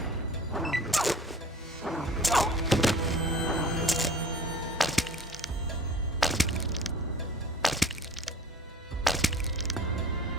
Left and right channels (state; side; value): normal; both; correlation 0.45